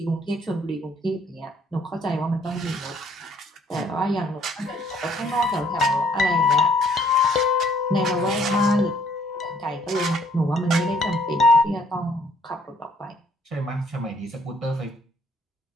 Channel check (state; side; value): normal; both; correlation 0.63